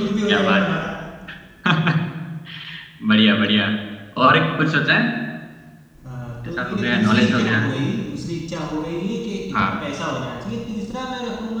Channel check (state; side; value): identical; both; correlation 1.00